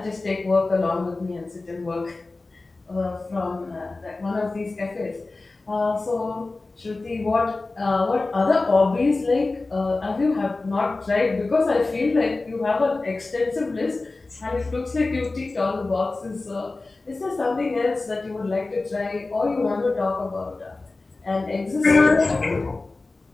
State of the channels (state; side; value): quieter; right; 3.4 dB